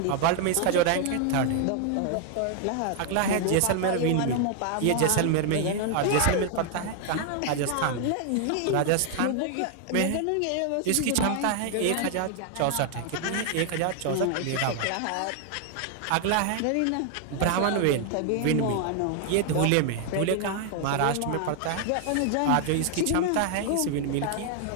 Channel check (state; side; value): different; both; correlation 0.00